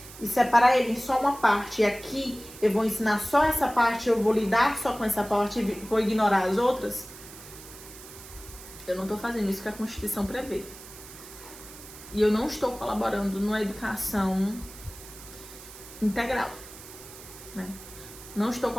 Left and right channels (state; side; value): noise; right; hiss, 16 dB below the sound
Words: e separar ele em só uma parte, e aqui eu vou ensinar só essa parte, eu vou lidar só com essa parte e vou ignorar as outras, eu não estou fazendo isso que a Constituição prevê. E eu não estou colaborando numa educação integral, né? Não estou